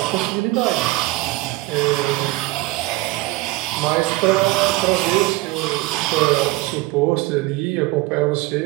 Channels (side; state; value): left; quieter; 20.1 dB